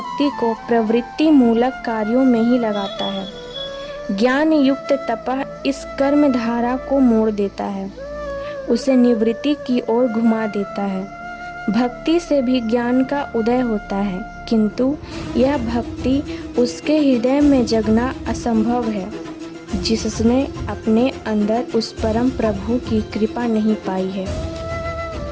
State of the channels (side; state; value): both; identical; correlation 1.00